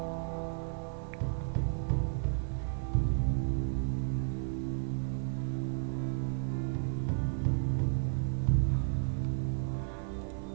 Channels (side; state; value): left; silent; 56 dB below the other